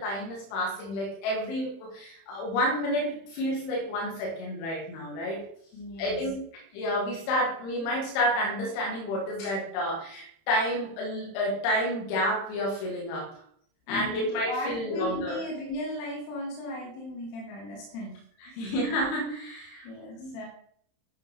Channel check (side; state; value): right; late; 31 ms